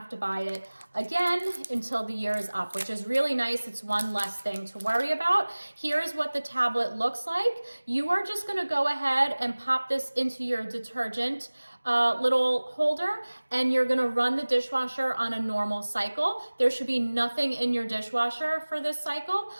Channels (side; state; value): both; inverted; correlation -1.00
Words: to buy it again until the year is up, which is really nice. It's one less thing to worry about. Here's what the tablet looks like. You are just gonna go ahead and pop this into your detergent little holder and you're gonna run the dishwasher on a normal cycle. There should be nothing in your dishwasher for this cycle,